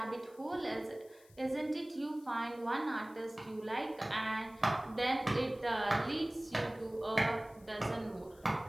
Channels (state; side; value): noise; left; hiss, 27 dB below the sound